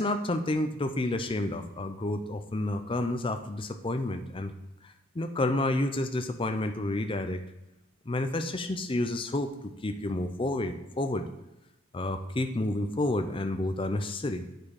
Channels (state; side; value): normal; both; correlation 0.68